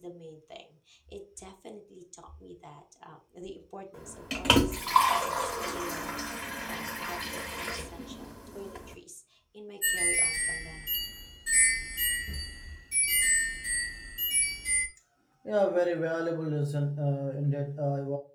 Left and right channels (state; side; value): identical; both; correlation 1.00